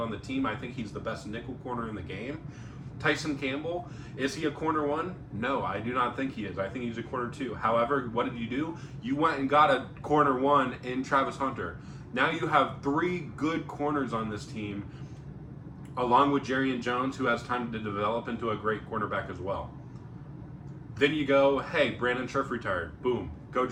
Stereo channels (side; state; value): both; identical; correlation 1.00